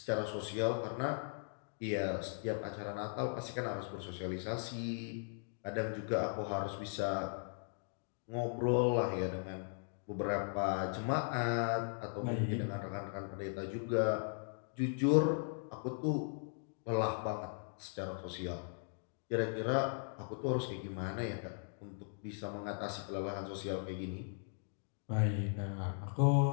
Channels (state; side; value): silent; right; digital silence